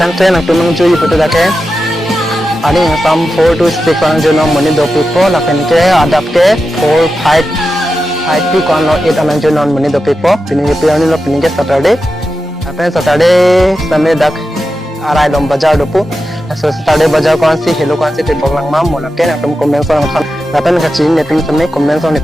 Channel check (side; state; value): both; normal; correlation 0.91